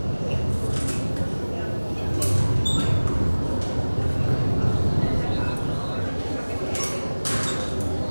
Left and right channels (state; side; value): inverted; both; correlation -1.00